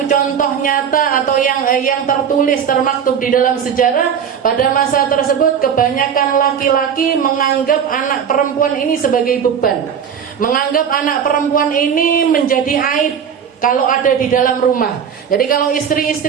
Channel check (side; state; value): left; quieter; 7.8 dB